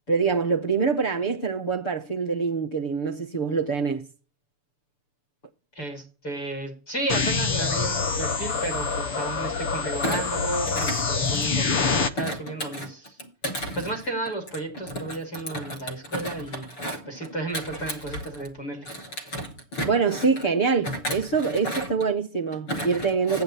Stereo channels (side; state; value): right; late; 6.9 ms